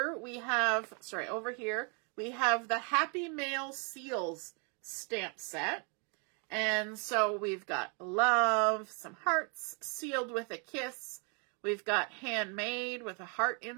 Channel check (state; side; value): quieter; left; 36.7 dB